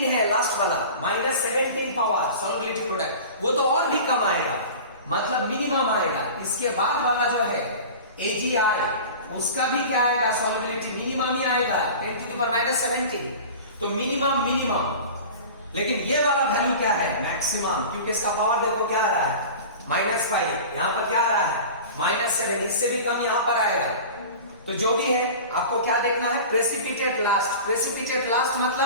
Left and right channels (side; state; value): both; inverted; correlation -0.36